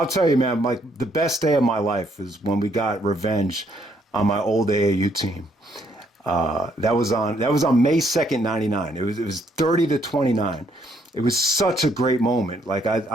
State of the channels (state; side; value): normal; both; correlation 0.70